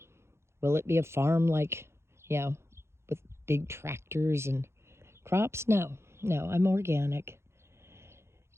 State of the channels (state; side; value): late; left; 0.13 ms